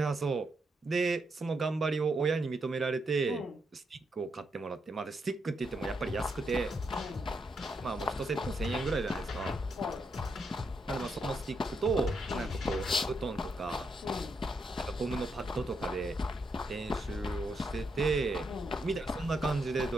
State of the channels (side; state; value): both; normal; correlation 0.80